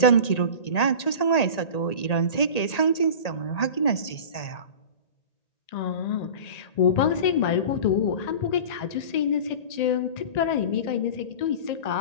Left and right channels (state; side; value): late; right; 1.8 ms